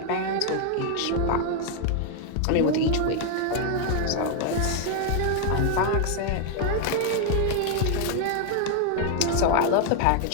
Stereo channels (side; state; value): both; different; correlation 0.00